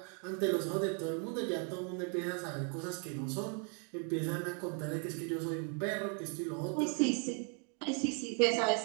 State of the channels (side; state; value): left; quieter; 38.2 dB